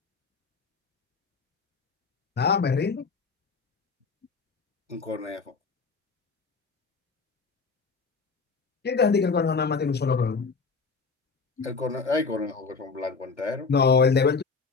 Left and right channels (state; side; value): quieter; right; 4.8 dB